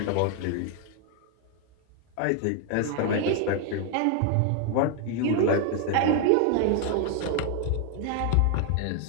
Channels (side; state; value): both; different; correlation 0.00